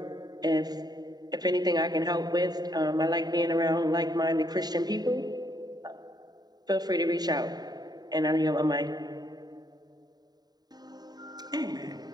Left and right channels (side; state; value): left; late; 0.19 ms